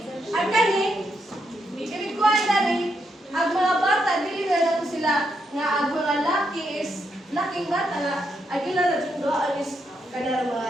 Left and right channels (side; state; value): both; normal; correlation 0.80